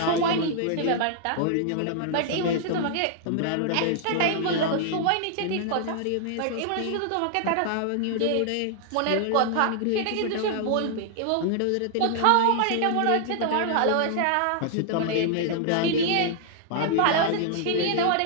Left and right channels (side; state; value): both; different; correlation -0.01